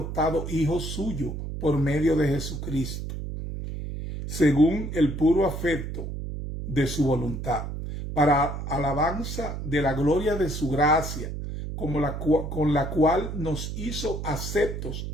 hijos suyos por medio de Jesucristo, según el puro afecto de su voluntad, para alabanza de la gloria de su gracia, con la cual nos hizo aceptos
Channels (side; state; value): right; noise; hum, 6 dB below the sound